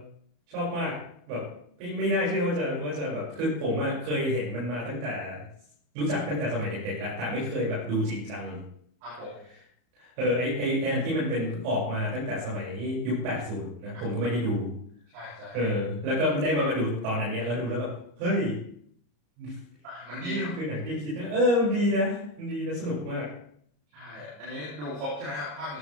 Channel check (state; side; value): late; left; 34 ms